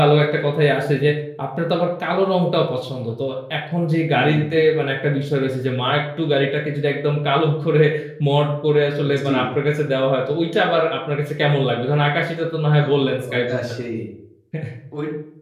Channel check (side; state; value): both; identical; correlation 1.00